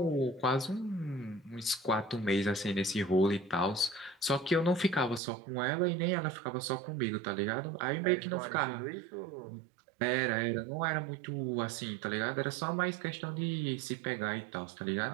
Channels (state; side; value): drops out; left; at 5.2 s